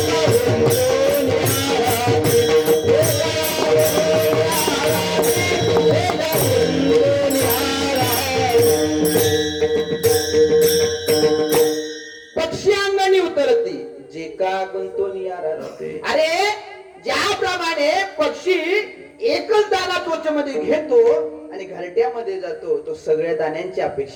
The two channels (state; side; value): identical; both; correlation 1.00